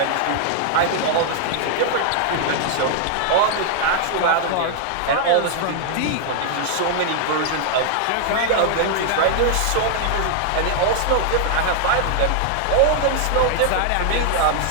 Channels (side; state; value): both; different; correlation 0.00